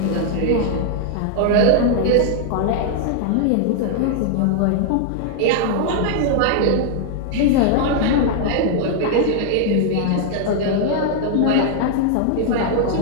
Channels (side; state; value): both; different; correlation 0.00